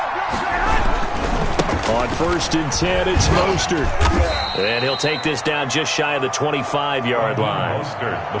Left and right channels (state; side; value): identical; both; correlation 1.00